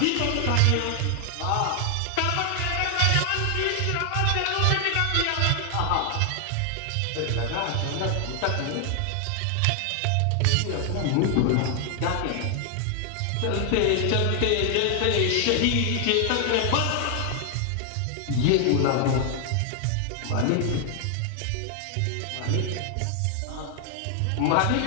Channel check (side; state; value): both; different; correlation 0.00